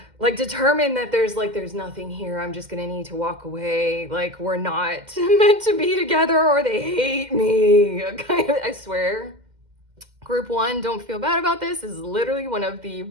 like, determine that there's nothing here. I'm just gonna need to walk away. Like, we're not meant to be together, or they hate me. I swear. Group 1, don't feel bad about this. This is literally one of the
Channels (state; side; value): late; left; 2.1 ms